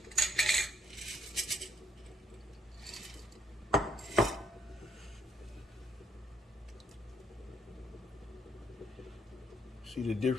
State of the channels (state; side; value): normal; both; correlation 0.70